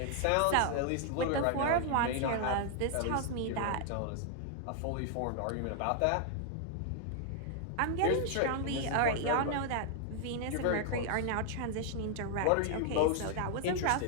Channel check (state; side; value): different; both; correlation 0.00